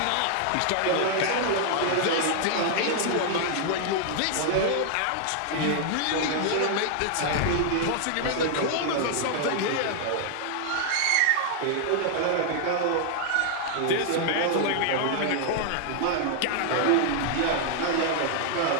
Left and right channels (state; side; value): different; both; correlation 0.00